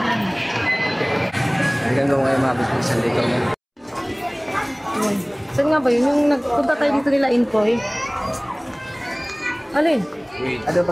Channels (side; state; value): both; identical; correlation 1.00